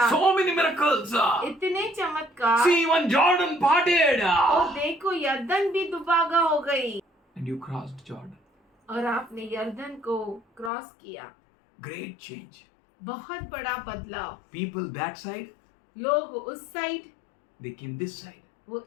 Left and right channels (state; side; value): drops out; right; at 10.7 s